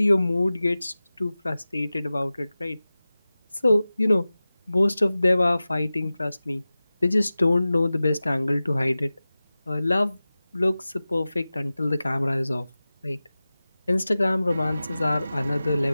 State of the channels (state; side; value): inverted; both; correlation -0.96